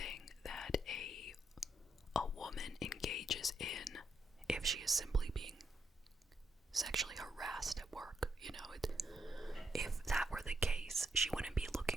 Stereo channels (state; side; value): normal; both; correlation 0.79